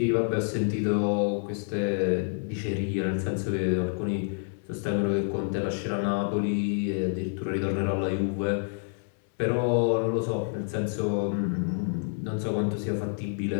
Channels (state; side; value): silent; right; digital silence